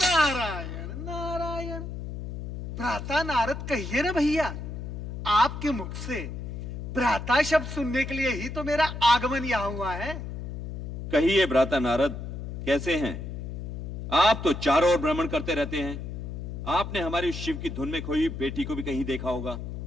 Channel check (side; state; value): left; noise; hum, 7 dB below the sound